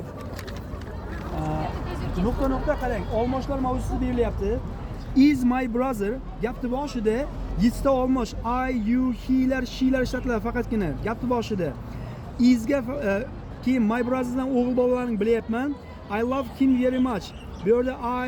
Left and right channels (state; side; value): identical; both; correlation 1.00